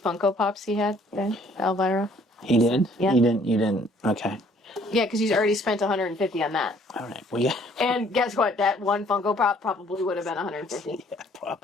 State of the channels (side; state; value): both; normal; correlation 0.60